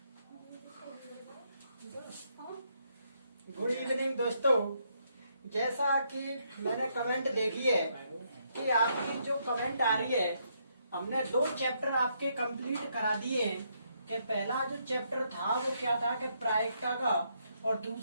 evening दोस्तों, जैसा कि मैंने कमेंट देखी है कि आपकी जो कमेंट आ रही है, हमने 2 चैप्टर आपके कंप्लीट करा दिए हैं। कि पहला जो चैप्टर था वो क्या था कि प्रायिकता का, और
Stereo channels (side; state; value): both; inverted; correlation -0.75